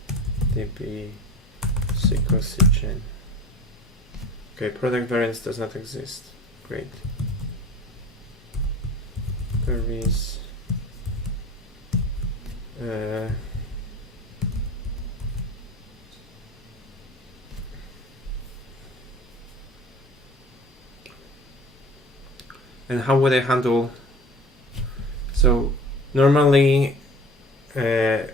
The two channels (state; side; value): normal; both; correlation 0.40